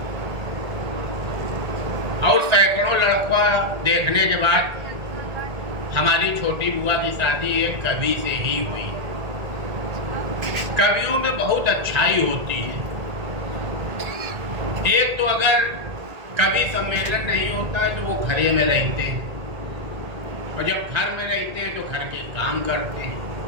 और सैकड़ों लड़का देखने के बाद हमारी छोटी बुआ की शादी एक कवि से ही हुई। कवियों में बहुत अच्छाई होती है। एक तो अगर कवि सम्मेलन नहीं होता है तो वो घरे में रहते हैं, और जब घर में रहते हैं तो घर के काम करते हैं।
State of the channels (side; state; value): left; late; 1.8 ms